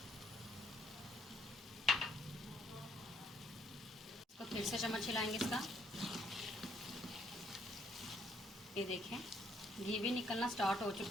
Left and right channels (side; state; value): both; normal; correlation 0.68